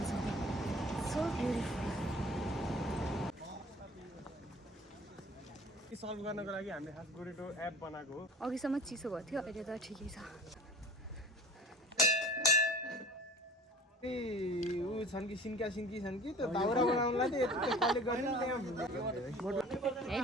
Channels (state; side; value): normal; both; correlation 0.43